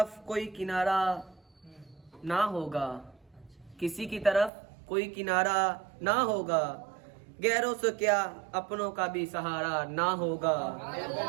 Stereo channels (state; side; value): drops out; left; at 4.5 s